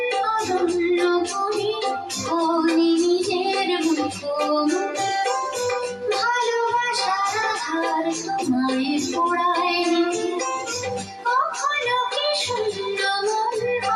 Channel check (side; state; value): both; identical; correlation 1.00